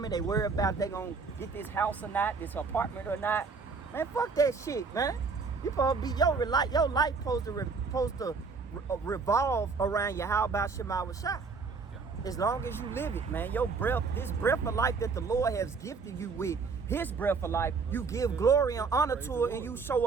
They worry about they gonna get this house or not, this apartment or not. Man, fuck that shit, man. You supposed to be your life supposed to revolve around your how about Shema Shah. Yeah. As long as you live it, man. Your breath, this breath of life that the Lord has gifted you with, his breath of life, you give glory and honor to it, and you show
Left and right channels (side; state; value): left; quieter; 4.8 dB